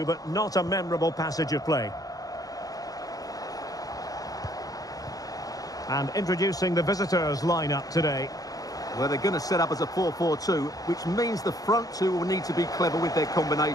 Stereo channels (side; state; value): right; late; 0.18 ms